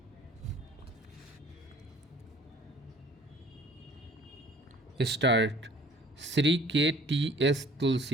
Start. Sri K.T.S.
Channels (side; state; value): both; normal; correlation 0.53